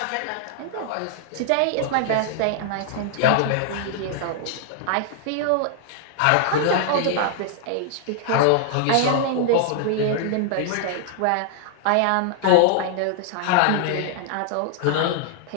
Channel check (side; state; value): both; different; correlation -0.01